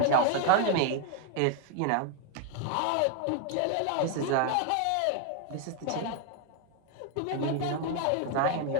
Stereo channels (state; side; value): different; both; correlation 0.00